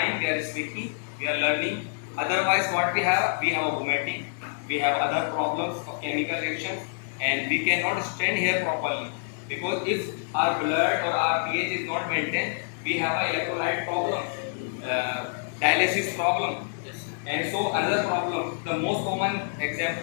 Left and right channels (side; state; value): right; silent; digital silence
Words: we are speaking, we are learning. Otherwise, what we have? We have a vomiting, we have other problems of chemical reactions, and we cannot stand here properly. Because if our blood or our pH is not maintained, we have an electrolyte problem, dialysis problem. And so another problem, the most common